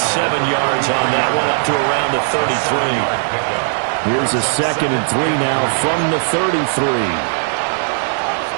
7 yards on that one, up to around the 33. Here's a 2nd and 3 now from the 33.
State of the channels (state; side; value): silent; left; digital silence